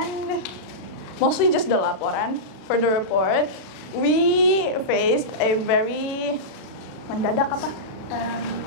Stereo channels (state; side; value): late; right; 36 ms